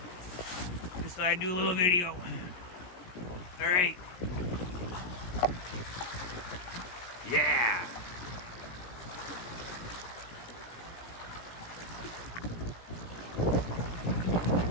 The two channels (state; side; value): late; right; 17 ms